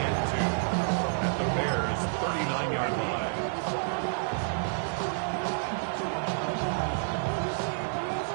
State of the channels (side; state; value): left; silent; digital silence